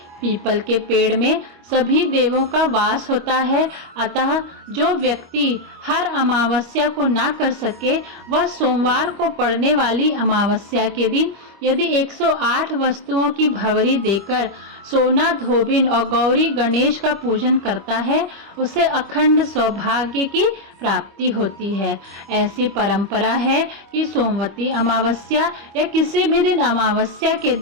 पीपल के पेड़ में सभी देवों का वास होता है, अतः जो व्यक्ति हर अमावस्या को ना कर सके, वह सोमवार को पड़ने वाली अमावस्या के दिन यदि 108 वस्तुओं की भंवरी देकर सोना धोबिन और गौरी गणेश का पूजन करता है, उसे अखंड सौभाग्य की प्राप्ति होती है। ऐसी परंपरा है कि सोमवती अमावस्या या किसी भी दिन अमावस्या के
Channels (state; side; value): late; left; 25 ms